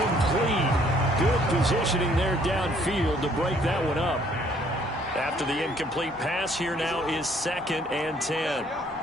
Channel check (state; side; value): normal; both; correlation 0.63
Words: Good positioning there downfield to break that one up. After the incomplete pass, here now is 2nd and 10.